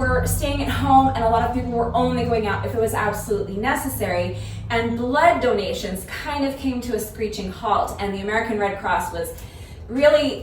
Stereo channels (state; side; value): identical; both; correlation 1.00